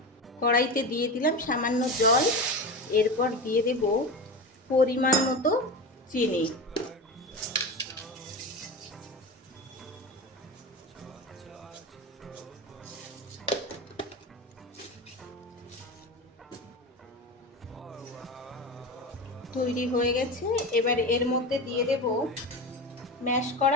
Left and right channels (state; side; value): normal; both; correlation 0.24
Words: কড়াইতে দিয়ে দিলাম সামান্য জল, এরপর দিয়ে দেব পরিমাণ মতো চিনি। তৈরি হয়ে গেছে। এবার এর মধ্যে দিয়ে দেব ম্যাশ